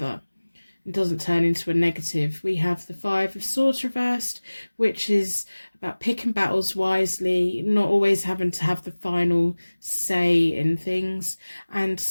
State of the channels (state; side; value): inverted; both; correlation -1.00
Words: It doesn't turn into a negative. We have the Five of Swords reversed, which is about picking battles wisely, not always having to have the final say in things, and